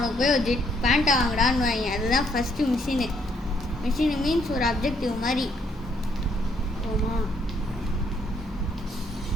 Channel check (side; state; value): both; normal; correlation 0.70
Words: போய் ஒரு ஜெட் பேண்ட்டை வாங்கடான்னு வாங்க. அதுதான் ஃபஸ்ட்டு மிஷினு. மிஷினு மீன்ஸ் ஒரு அப்ஜெக்டிவ் மாதிரி. ஓமா